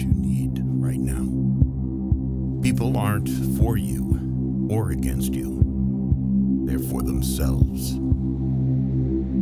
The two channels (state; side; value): identical; both; correlation 1.00